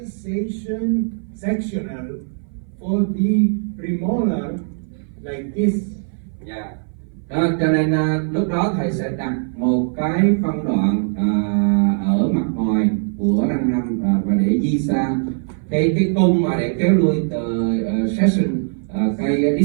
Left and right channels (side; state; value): left; silent; 60 dB below the other